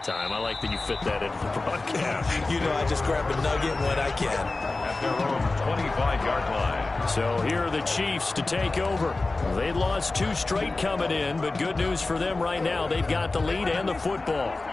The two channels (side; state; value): right; quieter; 3.3 dB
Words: I like that you fit that into the broadcast. You know, I just grab a nugget when I can. At their own 25-yard line. So here are the Chiefs to take over. They lost 2 straight coming in, but good news for them right now. They've got the lead and the football.